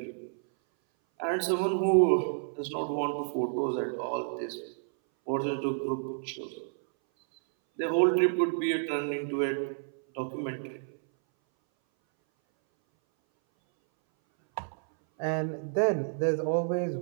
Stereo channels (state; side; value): silent; left; 58 dB below the other